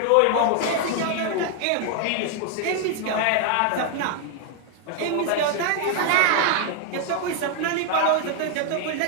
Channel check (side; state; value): both; different; correlation 0.00